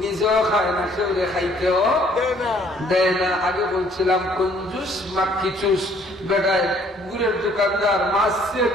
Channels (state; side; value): normal; both; correlation 0.61